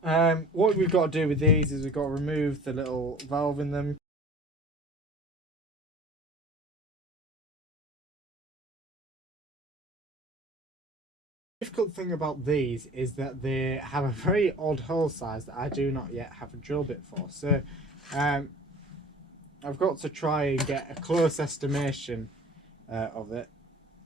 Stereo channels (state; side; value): normal; both; correlation 0.46